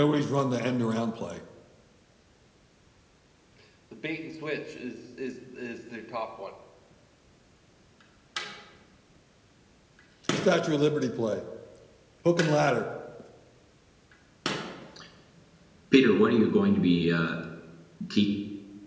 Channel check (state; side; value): identical; both; correlation 1.00